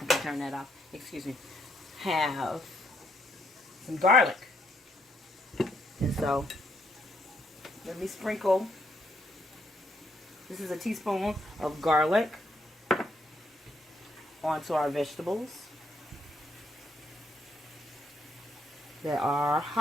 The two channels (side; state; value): both; normal; correlation 0.73